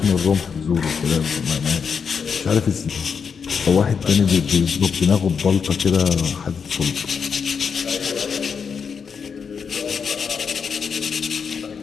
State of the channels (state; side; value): quieter; right; 6.3 dB